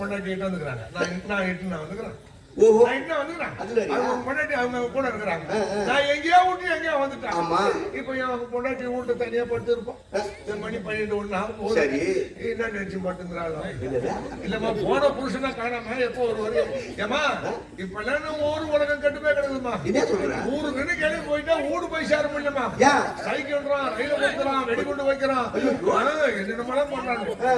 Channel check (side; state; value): both; identical; correlation 1.00